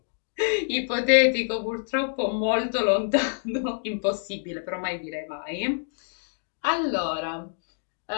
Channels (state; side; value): silent; right; digital silence